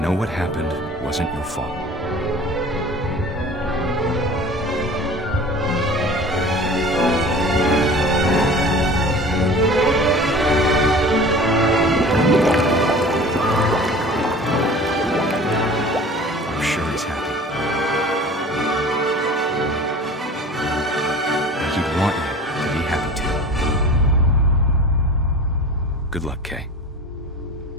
what happened wasn't your fault. I'm sure he's happy. And he'd want you to be happy too. Good luck, Kay.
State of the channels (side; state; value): both; normal; correlation 0.41